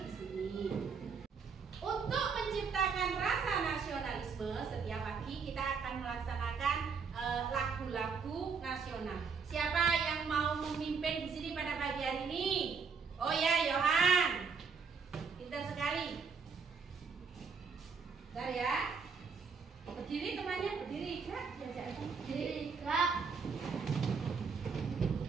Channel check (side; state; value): left; quieter; 5.5 dB